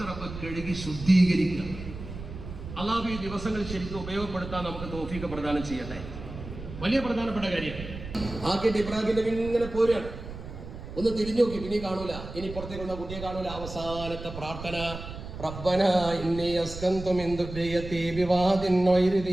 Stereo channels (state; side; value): noise; right; rumble, 11 dB below the sound